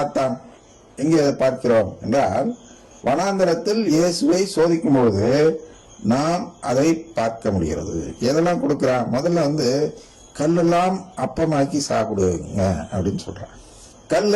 எங்கே பார்க்கிறோம் என்றால், வனாந்தரத்தில் இயேசுவை சோதிக்கும் பொழுது நாம் அதை பார்க்க முடிகிறது. எதெல்லாம் கொடுக்கிறான்? முதல்ல கல்லெல்லாம் அப்பமாக்கி சாப்பிடுங்க அப்படின்னு சொல்றான்.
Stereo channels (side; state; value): both; identical; correlation 1.00